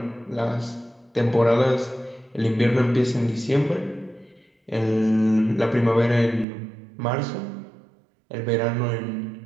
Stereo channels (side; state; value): left; drops out; at 6.5 s